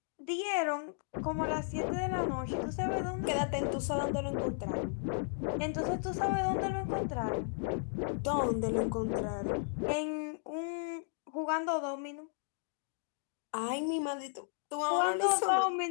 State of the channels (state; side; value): silent; right; digital silence